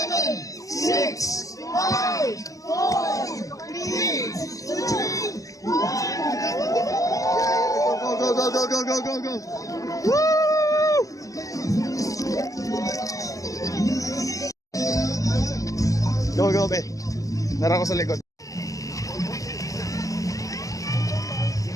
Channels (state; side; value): late; right; 0.17 ms